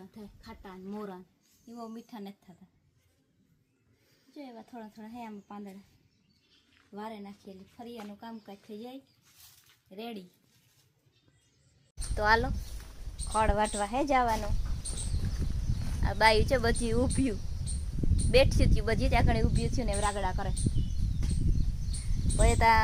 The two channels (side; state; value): both; identical; correlation 1.00